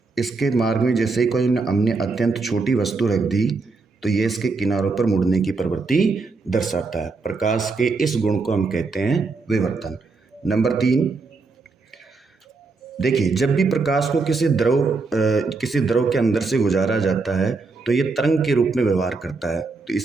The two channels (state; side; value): quieter; left; 4.1 dB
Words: इसके मार्ग में जैसे ही कोई हमने अत्यंत छोटी वस्तु रख दी तो ये इसके किनारों पर मुड़ने की प्रवृत्ति दर्शाता है। प्रकाश के इस गुण को हम कहते हैं विवर्तन। नंबर 3, देखिए जब भी प्रकाश को किसी द्रव के अंदर से गुजारा जाता है तो ये तरंग के रूप में व्यवहार करता है। तो